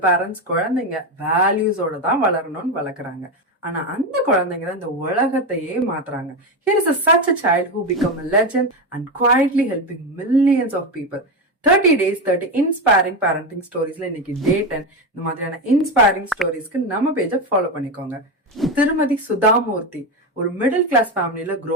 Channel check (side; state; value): both; normal; correlation 0.14